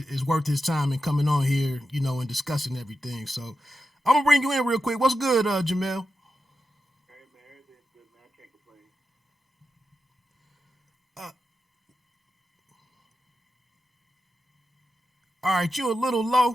worth his time in coming on here, and discussing everything. So I'm gonna bring you in real quick. What's good, Jamel? Hey man, everything's good, man. I can't complain. Uh, all right, you're a little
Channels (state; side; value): normal; both; correlation 0.89